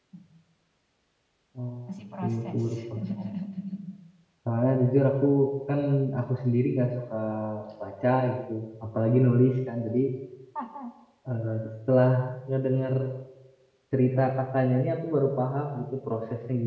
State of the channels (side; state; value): both; identical; correlation 1.00